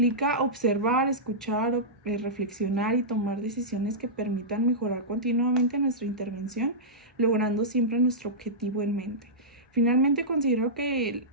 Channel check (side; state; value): both; normal; correlation -0.14